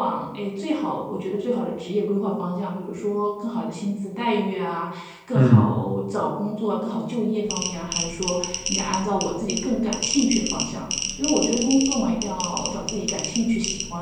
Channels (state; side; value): identical; both; correlation 1.00